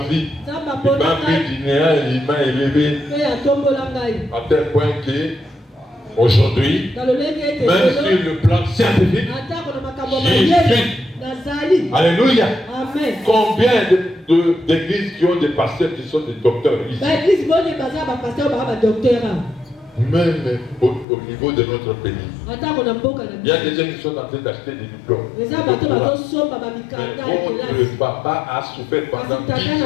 Il m'a mis du néant, il m'a élevé à tel point que aujourd'hui, même sur le plan scientifique, j'y suis. Alléluia. Amen. Combien d'églises qui ont des pasteurs qui sont des docteurs ici? Même au niveau de notre pays. Il y a des gens qui sont en train d'acheter des diplômes. Votre papa a souffert pendant 10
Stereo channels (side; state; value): right; drops out; at 21.1 s